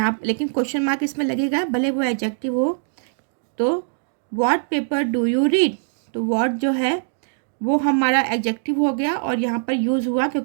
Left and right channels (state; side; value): silent; left; digital silence